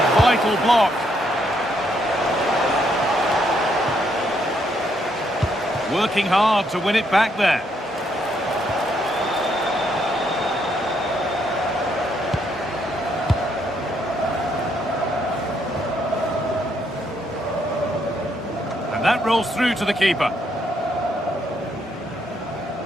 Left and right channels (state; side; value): normal; both; correlation 0.74